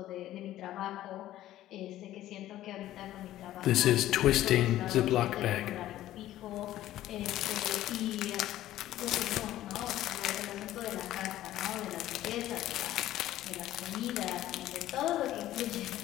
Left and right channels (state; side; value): quieter; right; 13.9 dB